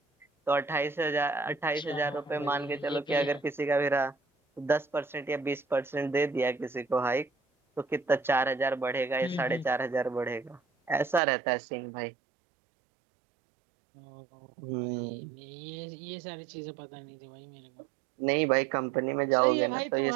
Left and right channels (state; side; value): drops out; left; at 11.2 s